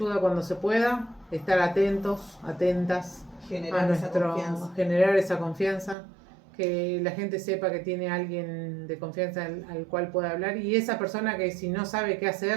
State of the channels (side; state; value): left; drops out; at 6.0 s